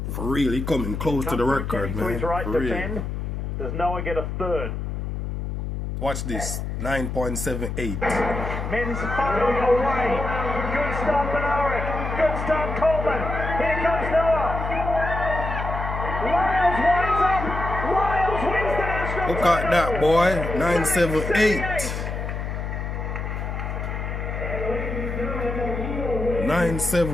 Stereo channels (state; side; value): noise; left; hum, 4 dB below the sound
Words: For real, he's coming close to the record, man, for real. Does Noah get a third? Watch this, 9.78. Men's firing away. Good start, Benaric. Good start, Coleman. Here comes Noah. Lyles winds up. Lyles wins the national Look at that, boy. 9.78.